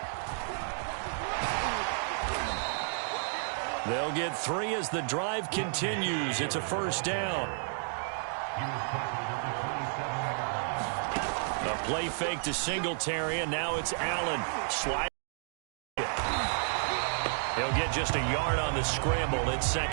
They'll get 3 as the drive continues. It's a first down. A play fake to Singletary, and now it's Allen. Slide. He'll get just a yard on the scramble. It's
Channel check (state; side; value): silent; left; 57 dB below the other